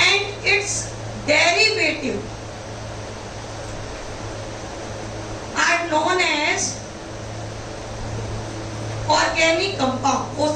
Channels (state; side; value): identical; both; correlation 1.00